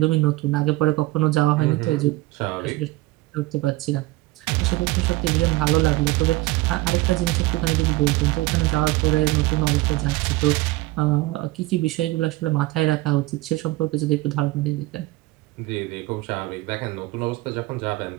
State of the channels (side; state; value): left; quieter; 19.2 dB